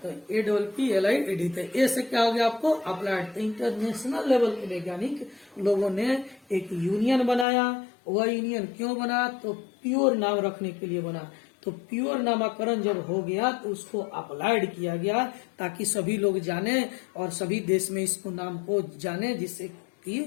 तो APPLIED, तो ए से क्या हो गया आपको अप्लाइड। तो इंटरनेशनल लेवल के वैज्ञानिक लोगों ने एक यूनियन बनाया। वह यूनियन क्यों बना, तो प्योर नाम रखने के लिए बना। तो प्योर नामाकरण जब हो गया तो उसको अप्लाइड किया गया ताकि सभी लोग जाने और सभी देश में इसको नाम को जाने, जिससे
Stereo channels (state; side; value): drops out; right; at 7.5 s